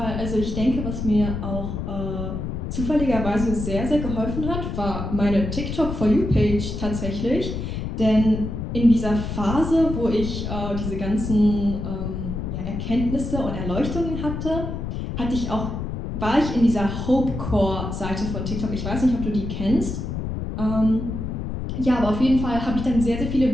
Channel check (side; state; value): left; noise; rumble, 4 dB below the sound